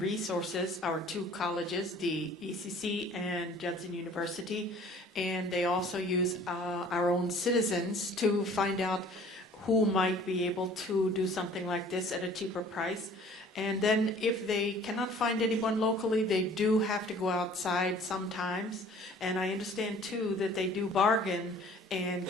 our two colleges, the ECC and Judson University, and they also use our own citizens to find out who might be able to do something like this at a cheaper price. And then if they cannot find anyone locally, they do have to go outside sometimes. And I understand too that they do bargain and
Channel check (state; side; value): normal; both; correlation 0.51